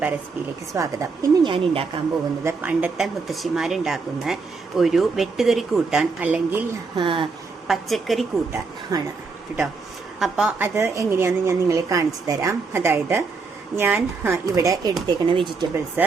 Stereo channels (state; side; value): quieter; left; 4.5 dB